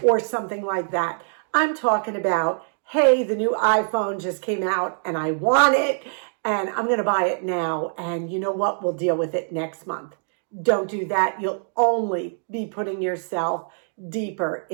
or something like that. I'm talking about, hey, the new iPhone just came out and I want it and I'm going to buy it now. And you know what? We'll deal with it next month. Don't do that. You'll only be putting yourself deeper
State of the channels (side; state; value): left; silent; digital silence